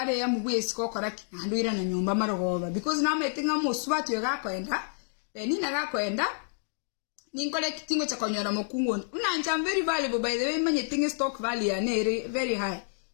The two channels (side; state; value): right; silent; digital silence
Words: ya mubwesi kokoraki nandwira na nyumba marogoba because na metinga muswatu yagakwenda benina gakwenda ninkole kitingo cha konyora mukungu unanja very valuable by the way manye tinga stock value ya nere very high